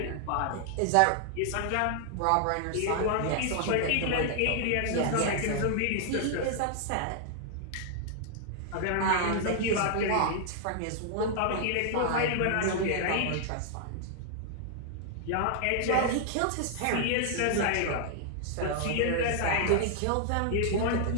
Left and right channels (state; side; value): different; both; correlation 0.00